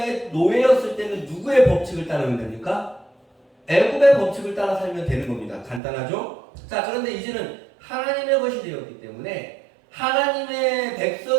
노예였을 때는 누구의 법칙을 따르면 됩니까? 애굽의 법칙을 따라 살면 되는 겁니다. 간단하죠? 자, 그런데 이제는 하나님의 것이 되었기 때문에 하나님의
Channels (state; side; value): drops out; left; at 5.8 s